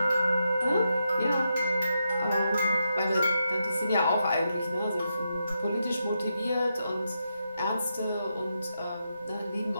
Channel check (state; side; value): inverted; both; correlation -0.84